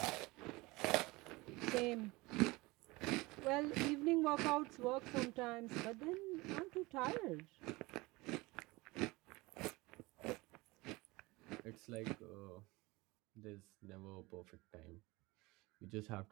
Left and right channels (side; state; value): left; quieter; 22.5 dB